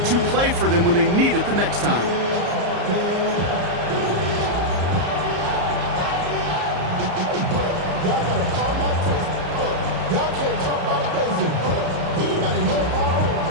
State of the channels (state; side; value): late; left; 34 ms